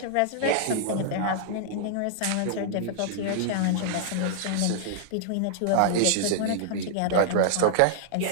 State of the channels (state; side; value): different; both; correlation -0.01